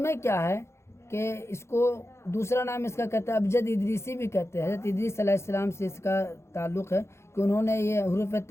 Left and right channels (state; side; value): late; right; 0.13 ms